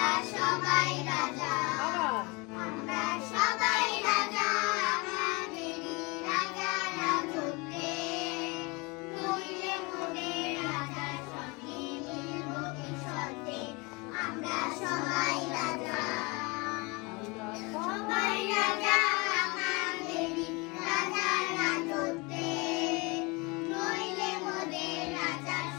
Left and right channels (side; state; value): right; quieter; 27.2 dB